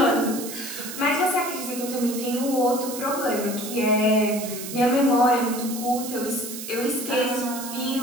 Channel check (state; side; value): noise; right; hiss, 9 dB below the sound